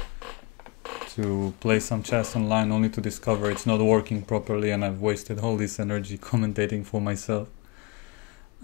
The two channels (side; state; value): right; quieter; 27.8 dB